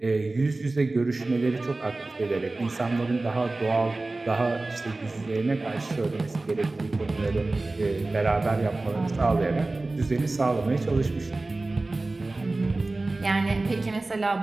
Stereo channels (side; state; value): left; quieter; 3.1 dB